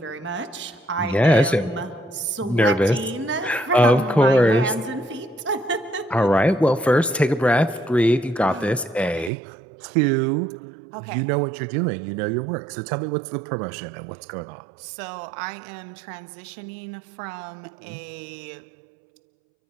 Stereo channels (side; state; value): left; drops out; at 9.3 s